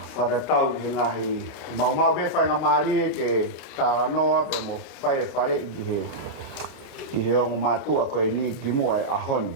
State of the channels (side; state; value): both; normal; correlation -0.08